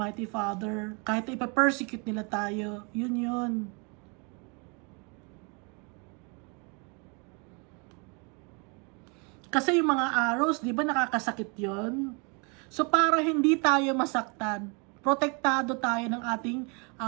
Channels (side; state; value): left; quieter; 33.2 dB